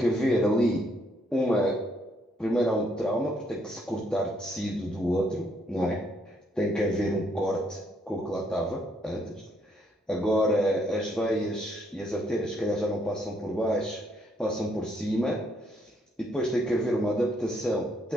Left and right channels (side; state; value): both; normal; correlation 0.71